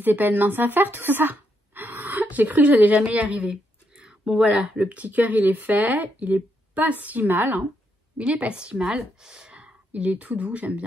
pas une mince affaire, tout ça. J'ai cru que j'allais jamais y arriver. Bon, voilà, le petit cœur, il est fait. Il est pas si mal, hein. Il est pas si mal. Il est tout doux, j'aime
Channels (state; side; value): normal; both; correlation 0.78